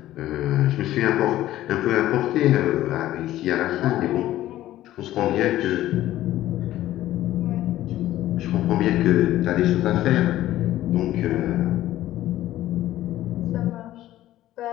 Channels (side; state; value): right; quieter; 14.3 dB